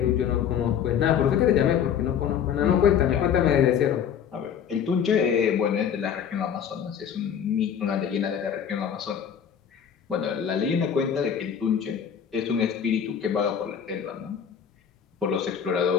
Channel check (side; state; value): right; quieter; 8.2 dB